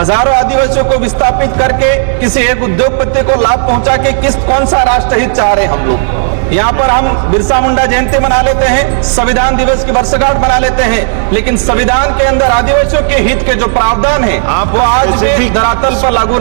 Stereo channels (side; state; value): left; silent; digital silence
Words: आदिवासियों को विस्थापित करके किसी एक उद्योगपति को लाभ पहुंचा के कौन सा राष्ट्रहित चाह रहे हैं हम लोग। यहाँ पर हम बिरसा मुंडा जयंती मना लेते हैं, संविधान दिवस की वर्षगांठ मना लेते हैं, लेकिन संविधान के अंदर आदिवासियों के हित के जो प्रावधान है वो आज भी धरातल पर लागू